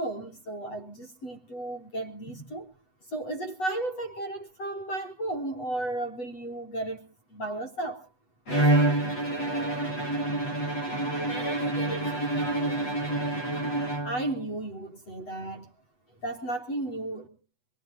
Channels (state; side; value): late; right; 8.0 ms